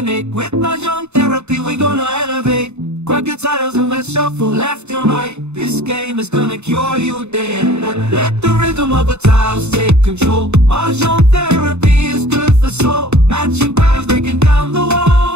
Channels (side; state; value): left; late; 0.82 ms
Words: With Mahjong therapy, we're gonna elevate. Grab your titles and let's shuffle left and right. This game is gonna cure you day and night. Let the rhythm of the tiles take control. Mahjong therapy is good for soul. Matching patterns, breaking down the